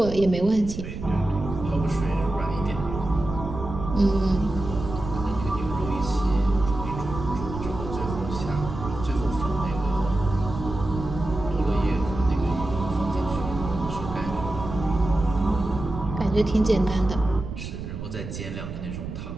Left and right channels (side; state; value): right; noise; rumble, 8 dB below the sound